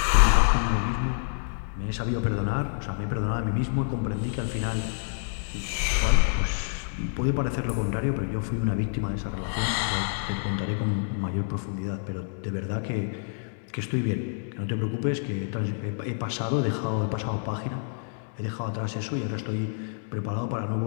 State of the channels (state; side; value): silent; right; digital silence